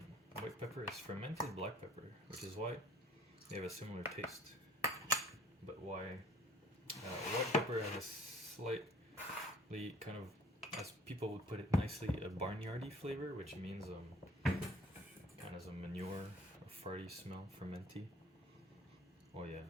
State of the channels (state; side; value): normal; both; correlation 0.54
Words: white pepper is fermented black pepper, which is why they have a similar taste. But why white pepper has a slightly kind of as people would put it nicely, a barnyardy flavor, which means kind of a manure, a farty smell, fermenty. Oh yeah,